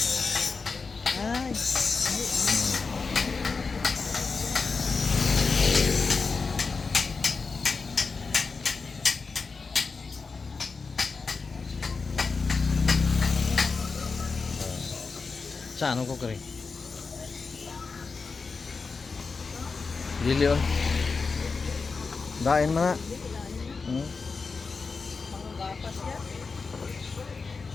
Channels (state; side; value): quieter; right; 4.6 dB